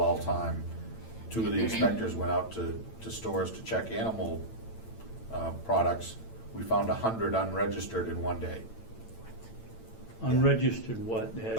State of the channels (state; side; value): late; right; 8.9 ms